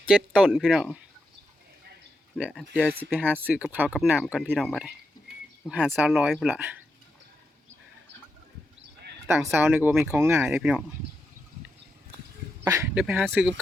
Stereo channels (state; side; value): normal; both; correlation 0.86